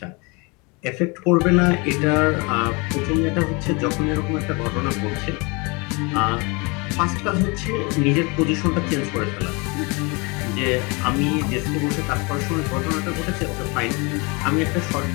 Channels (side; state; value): right; quieter; 28.5 dB